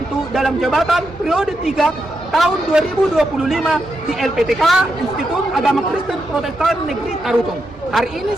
dalam jabatan periode 3 tahun 2025 di LPTK Institut Agama Kristen Protestan Negeri Tarutung. Hari ini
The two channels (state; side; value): normal; both; correlation 0.84